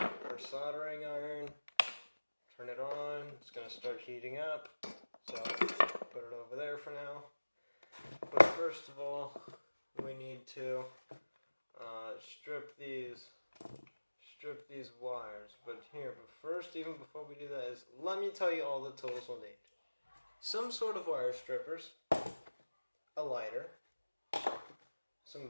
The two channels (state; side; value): inverted; both; correlation -1.00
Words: soldering iron. Turn it on, it's going to start heating up, so put it over there for now. But first of all, we need to strip these wires. But first, even before we do that, let me tell you all the tools we'll need. Some sort of wire strippers, a lighter, some